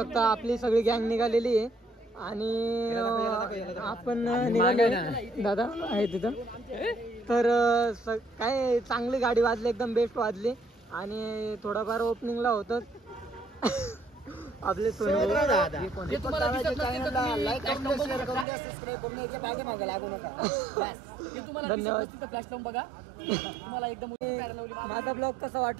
आपली सगळी गँग निघालेली आहे आणि आपण निघाले दादा आहे तिथं तर काय चांगली गाडी वाजली एकदम बेस्ट वाजली आणि थोडाफार ओपनिंगला होतं आपले माझा ब्लॉग कसा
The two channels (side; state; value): left; drops out; at 18.4 s